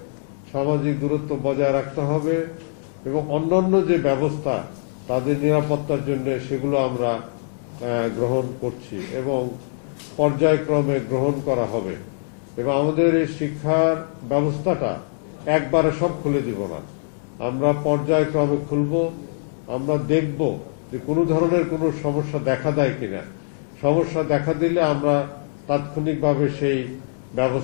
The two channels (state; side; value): silent; right; digital silence